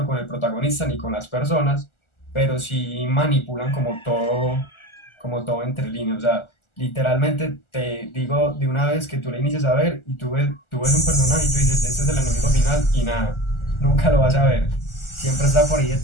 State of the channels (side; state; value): right; late; 1.4 ms